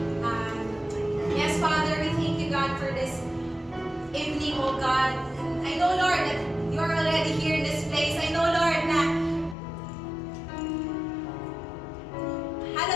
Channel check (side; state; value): right; drops out; at 9.6 s